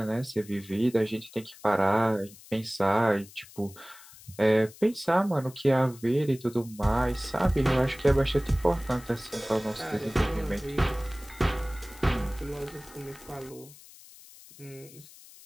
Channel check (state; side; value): noise; left; hiss, 20 dB below the sound